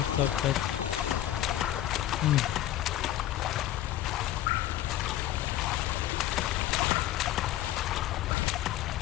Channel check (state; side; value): quieter; right; 13.2 dB